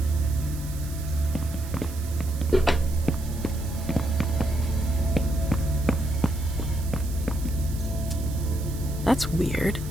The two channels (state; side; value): noise; right; hiss, 16 dB below the sound